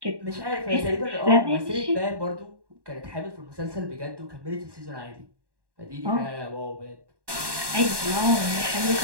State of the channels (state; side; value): late; left; 1.1 ms